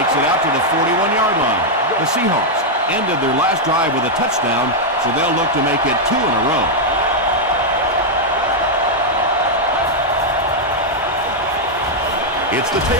it out to the 41-yard line. The Seahawks ended their last drive with a touchdown, so they'll look to make it 2 in a row. It's the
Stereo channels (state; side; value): normal; both; correlation -0.02